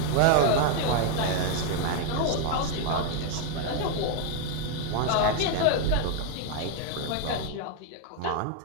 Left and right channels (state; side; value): different; both; correlation 0.01